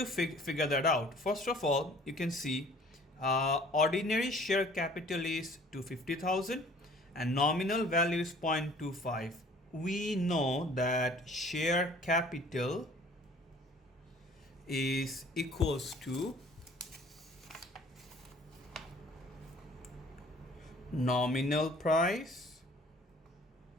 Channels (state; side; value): normal; both; correlation 0.52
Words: figure that out. First of all, you can see ordinary share capital is 250,000 and nominal value is 0.25. We know that share capital is equals to nominal price